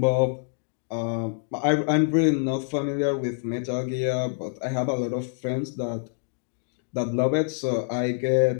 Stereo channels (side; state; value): right; silent; digital silence